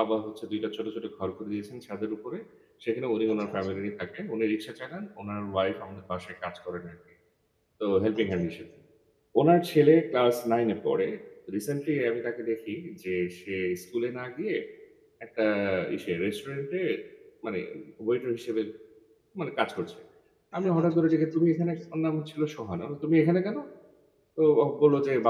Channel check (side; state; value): both; identical; correlation 1.00